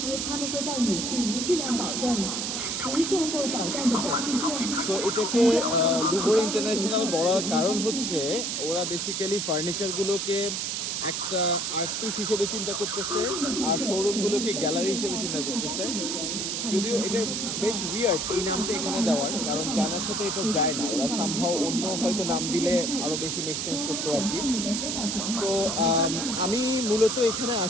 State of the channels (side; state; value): right; noise; hiss, 2 dB below the sound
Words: So এটাকে লুভর ইন্টারন্যাশনাল বলার কারণ হচ্ছে ওরা বেসিক্যালি ফার্নিচারগুলোকে একটা আর্ট পিস হিসেবে চিন্তা করতেছে আর শোরুমগুলোকে গ্যালারি হিসেবে চিন্তা করতেছে। যদিও এটা বেশ উইয়ার্ড এই নামটা এখানে দেওয়ার, কারণ চায়নার সাথে এটা যায় না। ওরা সামহাও অন্য হয়তো নাম দিলে আরও বেশি মেক সেন্স করতো আর কি। সো আমি মূলত এখানে